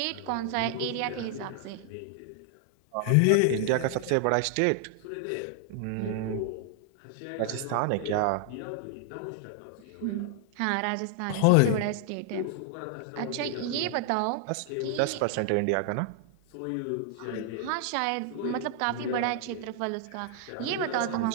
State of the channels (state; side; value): different; both; correlation 0.00